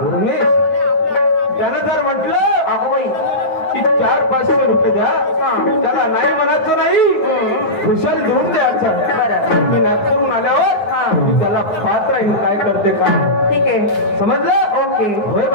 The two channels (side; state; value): right; late; 9.4 ms